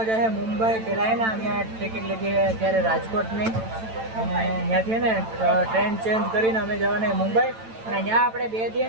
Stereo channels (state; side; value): late; left; 9.0 ms